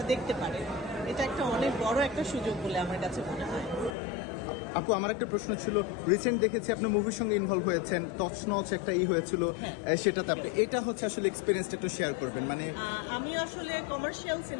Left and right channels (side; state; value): right; drops out; at 4.0 s